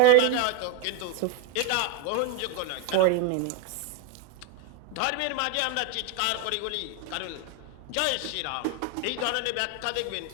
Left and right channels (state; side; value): different; both; correlation 0.02